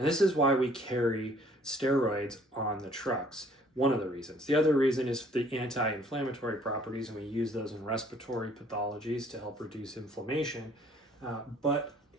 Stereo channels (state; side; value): normal; both; correlation 0.59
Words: this is why we carry steroids on the trucks. One of the reasons. The other reason is the anti-inflammatory properties, and we use those in respiratory pathologies to help reduce inflammation. But